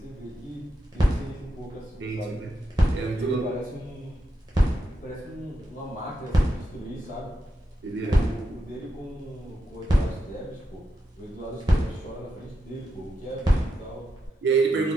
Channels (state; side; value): normal; both; correlation 0.85